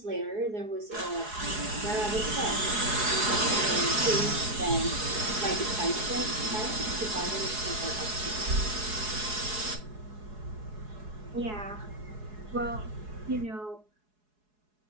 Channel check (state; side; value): late; left; 4.7 ms